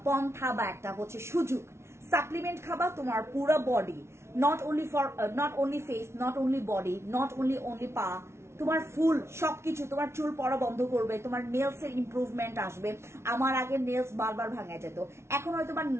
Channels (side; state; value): left; late; 0.13 ms